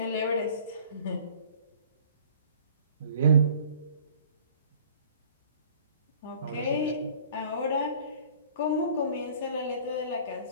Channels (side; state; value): both; inverted; correlation -0.50